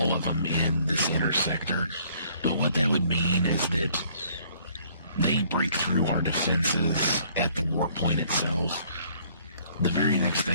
of them in this inner sector. But what that would mean is that they break through our defenses at the warp point itself. The very next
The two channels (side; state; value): both; inverted; correlation -0.61